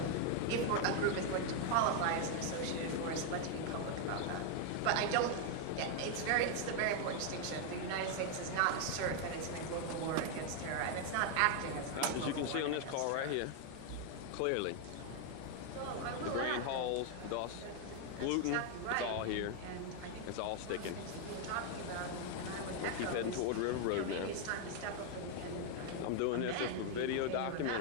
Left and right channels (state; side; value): different; both; correlation 0.00